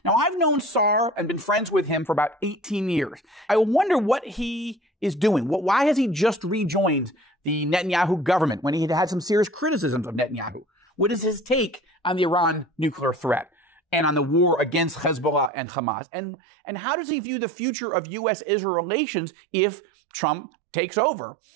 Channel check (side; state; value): left; drops out; at 15.5 s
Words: Now, I've known Sa'ar and been friends with him for about 18 years. I wonder what he is doing. Why has he just rejoined the Netanyahu government when he had some serious criticisms of Netanyahu? What is his take on the Iran nuclear threat and on the war against Hezbollah and Hamas? And how does he view the future of U.S.-Israel relations if Trump takes over?